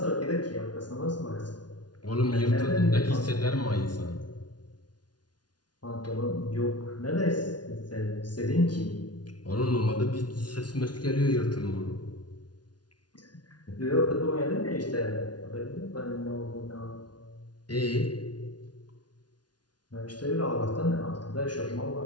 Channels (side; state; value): right; late; 0.69 ms